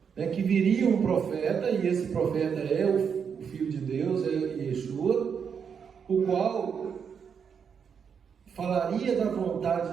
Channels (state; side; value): quieter; left; 6.8 dB